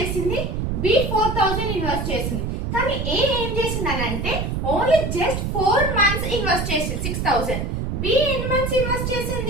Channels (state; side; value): noise; right; rumble, 2 dB below the sound